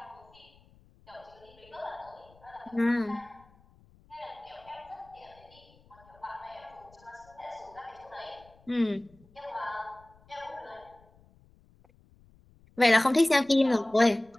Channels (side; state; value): left; noise; rumble, 28 dB below the sound